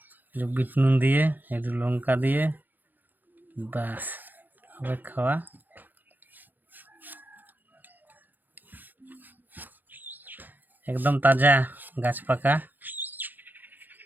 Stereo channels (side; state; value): left; late; 0.087 ms